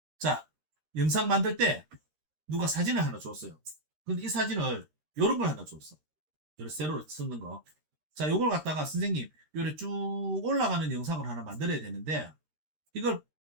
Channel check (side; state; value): left; late; 13 ms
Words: 자, 영상 만들 때 누가 사진을 하나 줬어요. 근데 이 사진을 요런 걸 하나 줬어. 요런 세로로 쓰는 거. 자, 요걸 갖다가 선생님 요래 쭉 올라가는 영상을 하나 만들어야 되는데 이걸